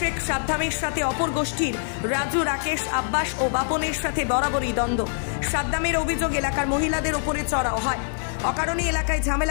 সাদ্দামের সাথে অপর গোষ্ঠীর রাজু, রাকেশ, আব্বাস ও বাপনের সাথে বরাবরই দ্বন্দ্ব। সাদ্দামের অভিযোগ এলাকার মহিলাদের ওপরে চড়াও হয়, অকারণে এলাকায়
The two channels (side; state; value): right; silent; 60 dB below the other